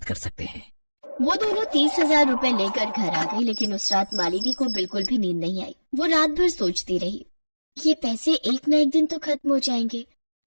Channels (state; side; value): inverted; both; correlation -1.00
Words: कर सकते हैं। वो दोनों 30,000 रुपए लेकर घर आ गई, लेकिन उस रात मालिनी को बिल्कुल भी नींद नहीं आई। वो रात भर सोचती रही, ये पैसे एक न एक दिन तो खत्म हो जाएंगे,